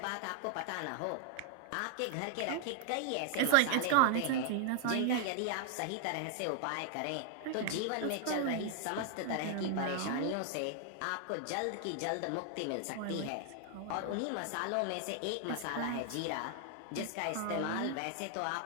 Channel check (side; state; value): both; different; correlation 0.00